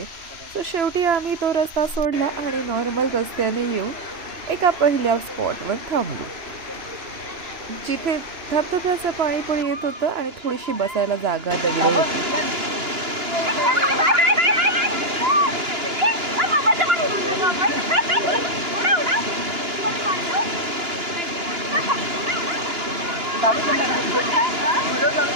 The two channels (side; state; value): left; late; 2.9 ms